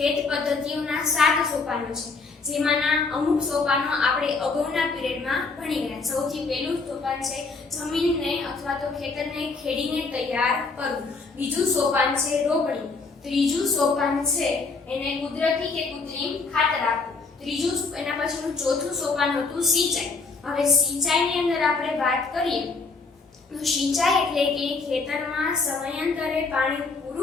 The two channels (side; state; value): right; quieter; 4.2 dB